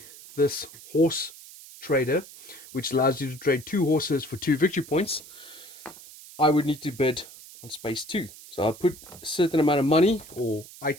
this horse trader, which allows you to trade 2 horses for 2 victory points, I would need to bid on space 2. So I'll put a certain amount of money or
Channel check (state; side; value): noise; right; hiss, 18 dB below the sound